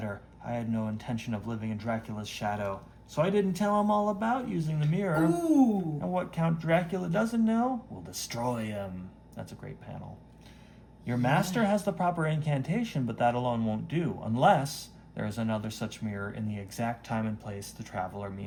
I had no intention of living in Dracula's shadow, so I didn't tell him all about using the mirror. Ooh. And what Count Dracula doesn't know will destroy him. That's a great panel. Your master has the proper incantation, but that alone won't do, unless there is another such mirror in the exact time and place the traveler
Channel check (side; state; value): both; identical; correlation 1.00